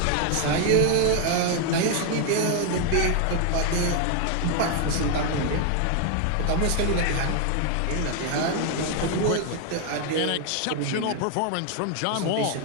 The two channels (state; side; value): different; both; correlation 0.00